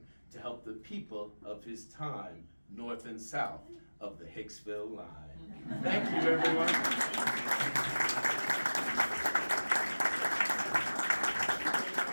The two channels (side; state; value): both; inverted; correlation -1.00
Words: to help the people of his time, north and south of the Hicksville line. Thank you, everyone.